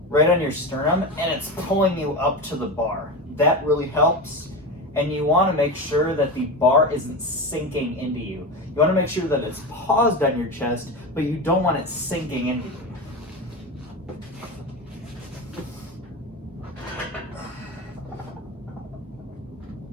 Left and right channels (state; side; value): normal; both; correlation 0.22